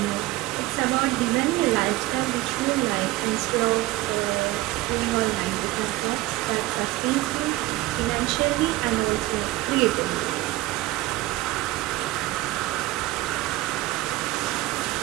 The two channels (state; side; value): quieter; left; 17.4 dB